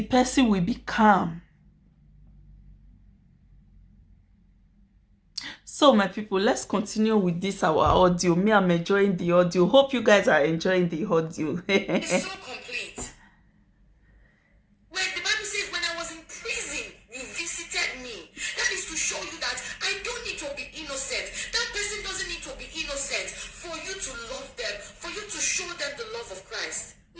person will be calm. So, my people, let's continue with this, our audio. Me, I'm enjoying the audio. Hope you guys are enjoying the audio. It's so complete. When the Bible says, when I was in prison, you visited me. That is to show you that I don't need to be innocent. That person doesn't need to be innocent for you to love them, for you to show them the love of Christ.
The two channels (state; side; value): identical; both; correlation 1.00